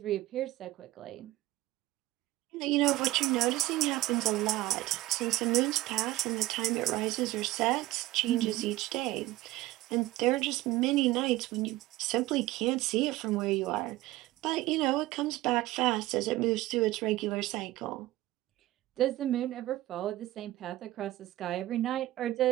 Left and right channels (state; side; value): quieter; left; 16.9 dB